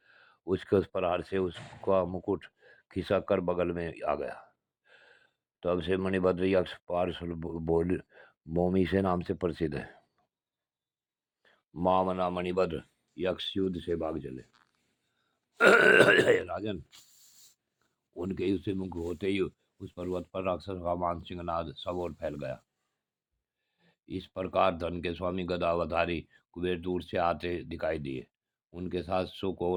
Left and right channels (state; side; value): identical; both; correlation 1.00